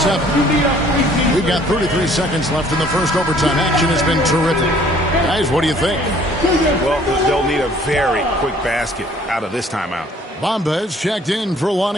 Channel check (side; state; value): both; normal; correlation 0.57